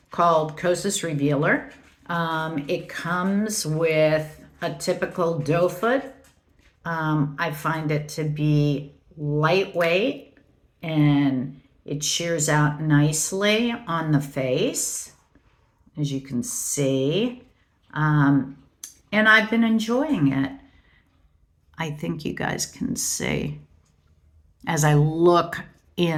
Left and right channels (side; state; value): both; identical; correlation 1.00